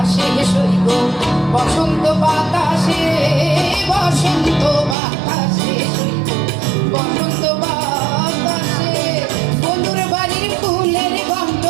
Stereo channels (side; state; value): left; drops out; at 5.0 s